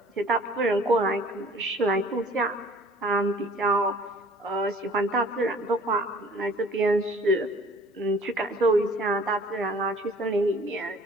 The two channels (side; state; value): both; normal; correlation 0.51